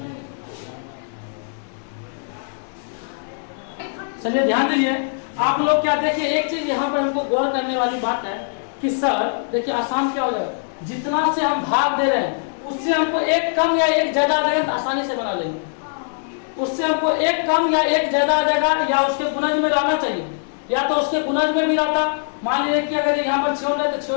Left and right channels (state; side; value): silent; right; digital silence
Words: चलिए ध्यान दीजिए आप लोग। क्या देखिए, एक चीज यहाँ पर हमको गौर करने वाली बात है कि सर देखिए आसान क्या हो जाएगा, जितना से हम भाग दे रहे हैं उससे हमको एक कम या एक ज्यादा आ जाएगा तो आसानी से बना लेंगे। उससे हमको एक कम या एक ज्यादा आ जाएगा या उसके गुणज में रहना चाहिए या तो उसके गुणज में भी रहता, मान लीजिए कि अगर यहाँ पर 56 है तो